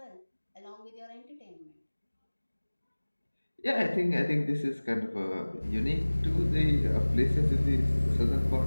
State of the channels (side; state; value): both; inverted; correlation -1.00